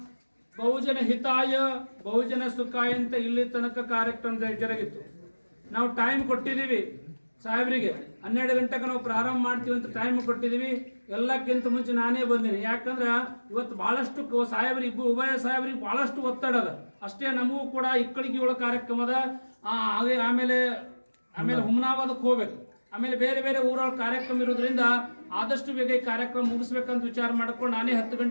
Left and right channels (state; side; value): inverted; both; correlation -1.00